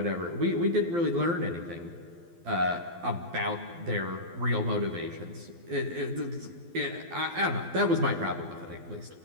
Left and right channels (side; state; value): left; late; 12 ms